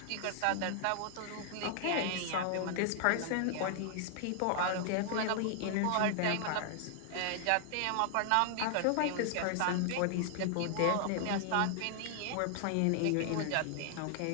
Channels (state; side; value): different; both; correlation 0.00